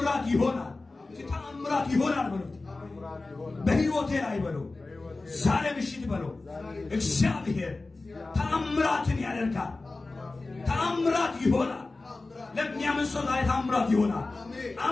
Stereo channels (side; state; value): right; quieter; 3.4 dB